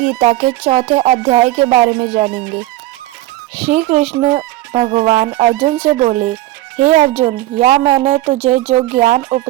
के चौथे अध्याय के बारे में जानेंगे। श्री कृष्ण भगवान अर्जुन से बोले, हे अर्जुन, यह मैंने तुझे जो ज्ञान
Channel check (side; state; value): left; quieter; 16.6 dB